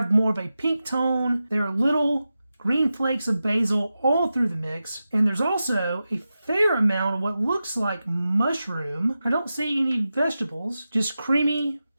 more of a pink tone. There are little green flakes of basil all through the mix. And there's also a fair amount of what looks like mushroom. I don't see any vegetables, just creamy,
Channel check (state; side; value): inverted; both; correlation -0.92